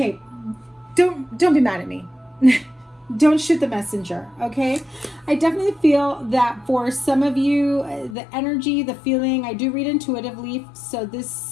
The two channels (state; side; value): drops out; right; at 8.2 s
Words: don't be mad at me. Don't shoot the messenger, okay? I definitely feel that for some of you, the energy, the feeling, I do read intuitively, so